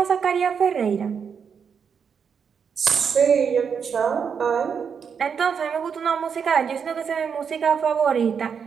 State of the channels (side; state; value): left; quieter; 6.7 dB